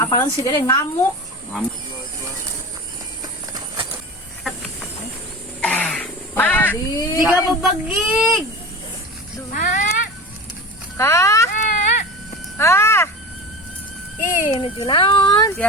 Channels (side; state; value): both; normal; correlation 0.31